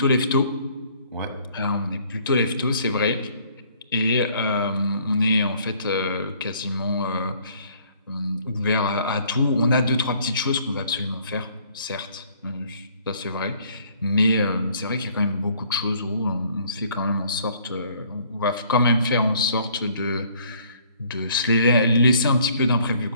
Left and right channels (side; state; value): both; inverted; correlation -0.60